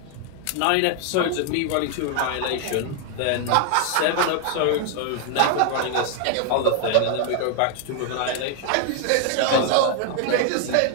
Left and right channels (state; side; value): different; both; correlation 0.00